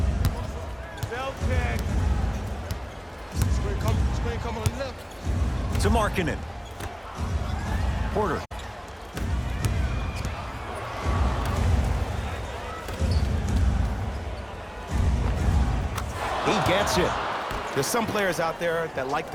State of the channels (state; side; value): identical; both; correlation 1.00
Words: Celtic. Screen come on the left. To Markkanen. Porter. He gets it. There's some players out there that like